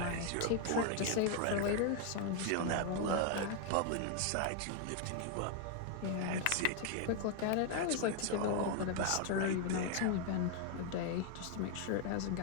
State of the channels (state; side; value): different; both; correlation 0.00